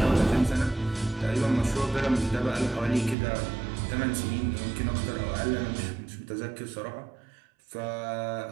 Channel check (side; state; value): left; drops out; at 3.2 s